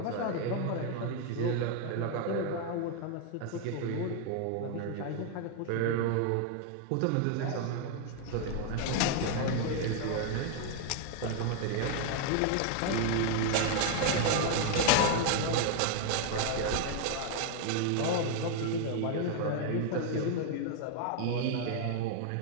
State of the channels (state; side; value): different; both; correlation 0.00